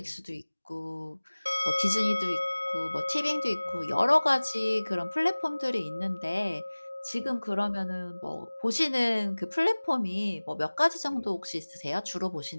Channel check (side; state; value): both; inverted; correlation -1.00